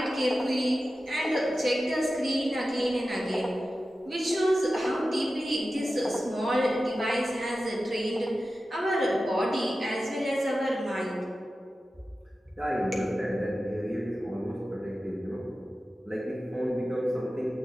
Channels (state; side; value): normal; both; correlation 0.94